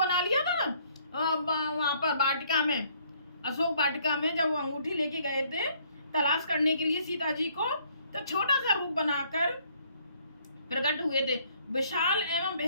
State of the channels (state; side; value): inverted; both; correlation -0.64